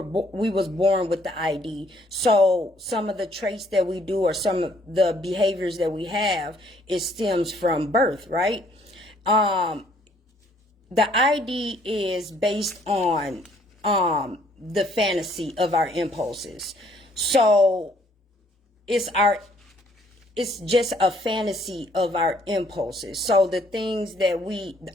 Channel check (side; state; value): both; normal; correlation 0.64